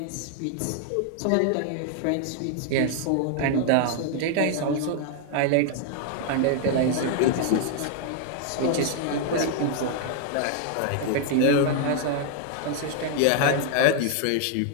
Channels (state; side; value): different; both; correlation 0.00